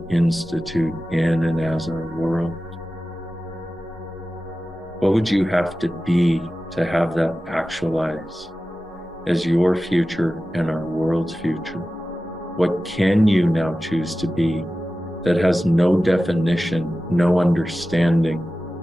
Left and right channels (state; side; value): normal; both; correlation 0.95